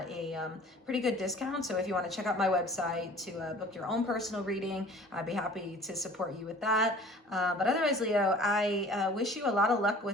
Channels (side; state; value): both; normal; correlation 0.48